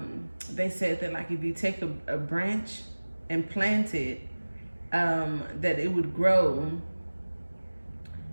they said that like if you take a branch and plant it, that it would grow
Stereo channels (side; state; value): both; inverted; correlation -1.00